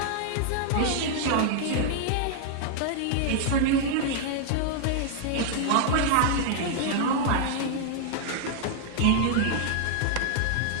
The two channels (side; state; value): both; different; correlation -0.01